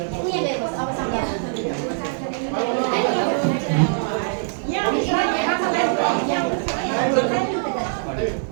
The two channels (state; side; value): silent; left; digital silence